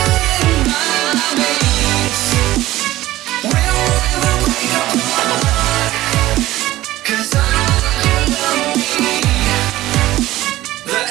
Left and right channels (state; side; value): quieter; left; 16.1 dB